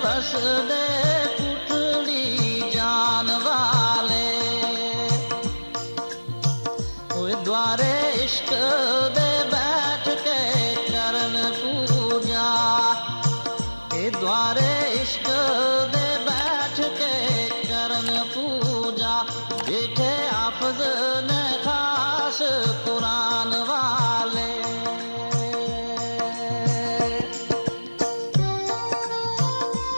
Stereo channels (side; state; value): both; inverted; correlation -1.00